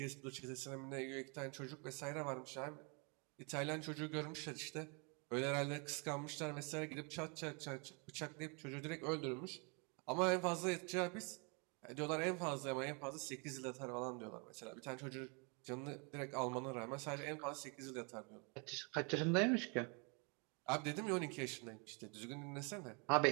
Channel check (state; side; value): quieter; left; 33.9 dB